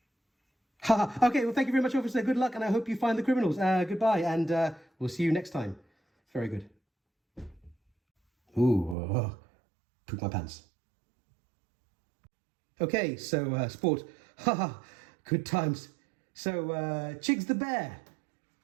Okay, well, thank you very much, officer. Good luck, and I hope you find the criminals. Goodbye, and we'll see you next time. Very good. Ooh, poop my pants. Okay, so sport. Good times. So, Chigs the bear,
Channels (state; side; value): drops out; left; at 9.0 s